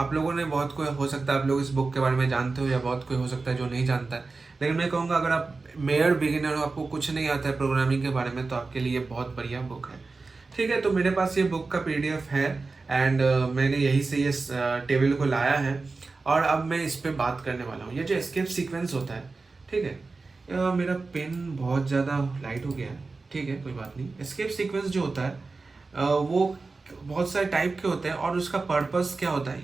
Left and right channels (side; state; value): left; quieter; 3.9 dB